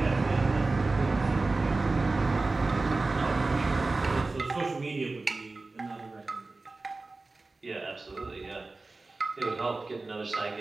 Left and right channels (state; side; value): quieter; left; 3.5 dB